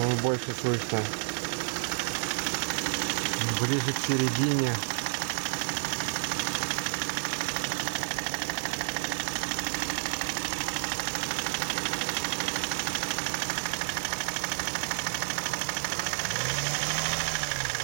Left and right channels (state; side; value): silent; left; digital silence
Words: больше слышно. Ближе к середине.